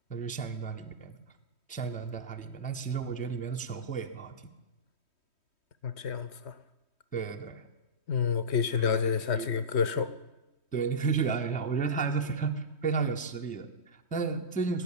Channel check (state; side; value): late; right; 3.1 ms